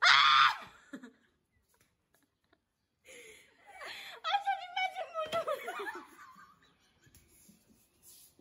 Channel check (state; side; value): identical; both; correlation 1.00